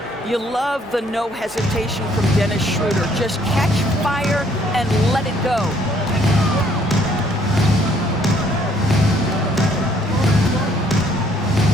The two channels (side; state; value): both; normal; correlation 0.64